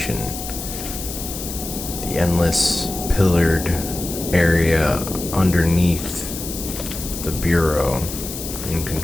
The endless pillared area underneath the Bureau in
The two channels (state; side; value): noise; left; hiss, 8 dB below the sound